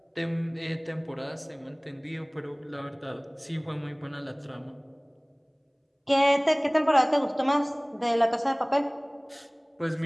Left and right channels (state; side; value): identical; both; correlation 1.00